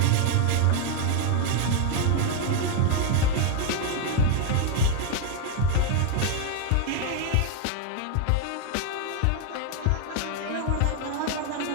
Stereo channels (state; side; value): different; both; correlation 0.00